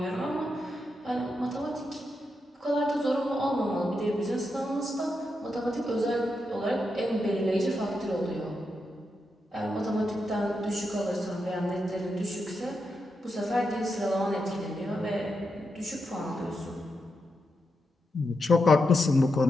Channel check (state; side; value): normal; both; correlation 0.85